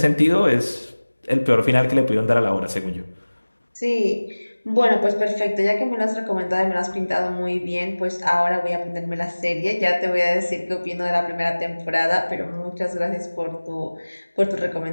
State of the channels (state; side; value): inverted; both; correlation -1.00